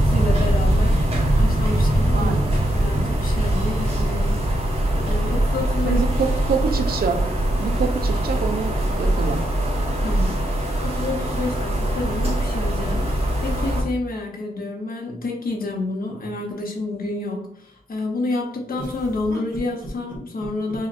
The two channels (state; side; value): normal; both; correlation 0.81